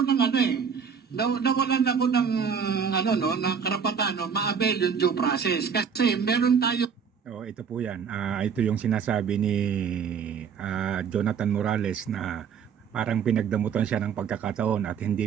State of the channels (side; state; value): left; quieter; 6.7 dB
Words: ng ano nawalan ako ng ano no, ng karapatan no, ma-avail yung due process kasi meron tayo. Ito po yan. Ito yung sinasabi ni Jonathan Morales na parang pinagdamutan siya ng pagkakataon at